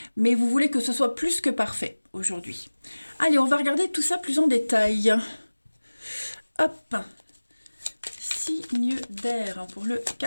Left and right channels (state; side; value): inverted; both; correlation -1.00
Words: mais vous voulez que ce soit plus que parfait aujourd'hui. Allez, on va regarder tout ça plus en détail. Hop. Signe d'air pour le